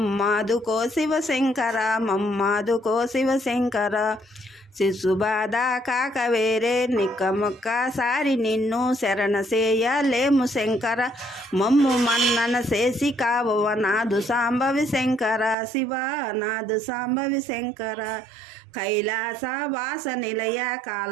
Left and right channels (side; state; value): left; drops out; at 15.6 s